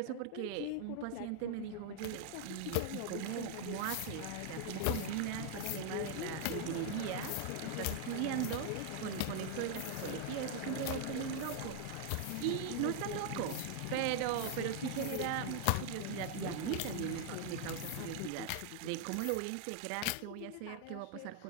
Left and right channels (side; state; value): both; different; correlation 0.00